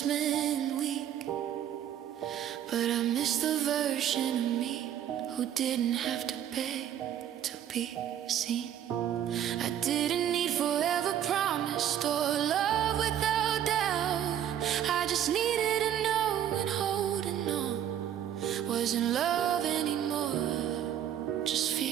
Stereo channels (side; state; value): left; quieter; 10.3 dB